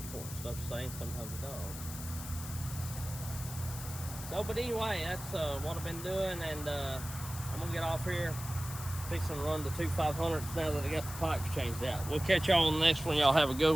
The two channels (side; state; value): left; noise; hiss, 11 dB below the sound